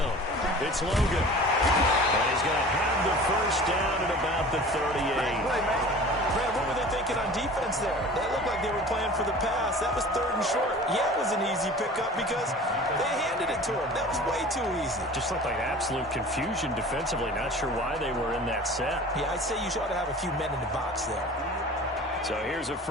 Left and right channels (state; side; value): normal; both; correlation 0.41